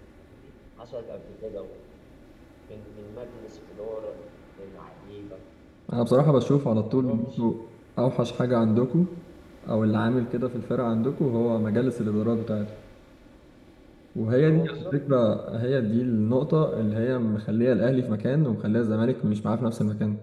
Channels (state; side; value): identical; both; correlation 1.00